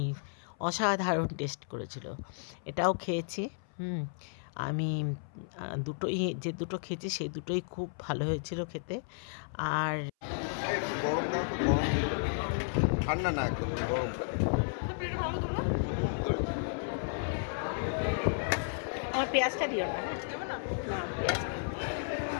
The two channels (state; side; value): silent; right; 56 dB below the other